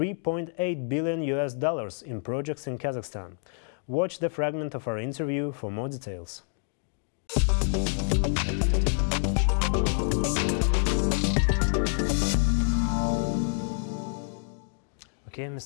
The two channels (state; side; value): silent; right; digital silence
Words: billion in projects in Kazakhstan. Watch the fragment of our interview for more details. Okay,